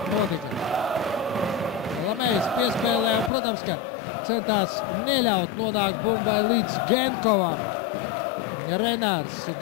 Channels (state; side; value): drops out; right; at 3.3 s